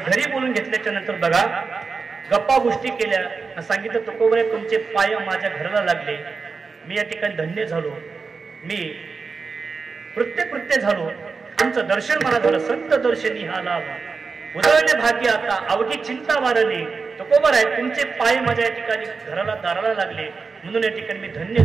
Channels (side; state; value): left; quieter; 4.7 dB